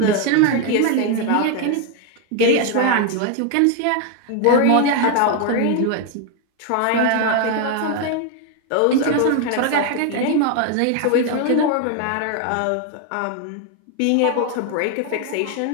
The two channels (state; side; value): different; both; correlation 0.01